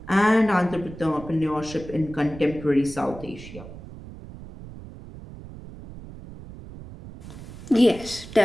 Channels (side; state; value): right; noise; rumble, 15 dB below the sound